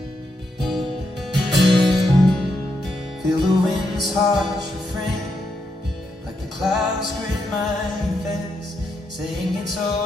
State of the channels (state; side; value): normal; both; correlation 0.81